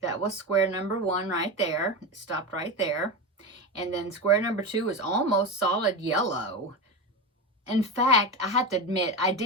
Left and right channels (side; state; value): both; normal; correlation 0.20